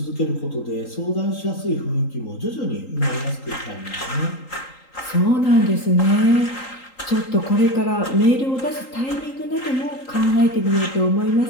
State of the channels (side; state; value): right; late; 3.8 ms